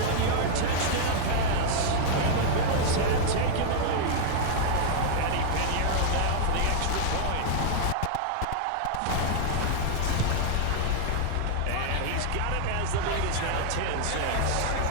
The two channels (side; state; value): both; different; correlation -0.01